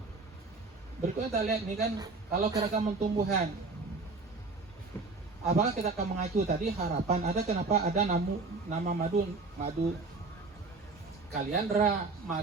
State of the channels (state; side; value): quieter; left; 3.8 dB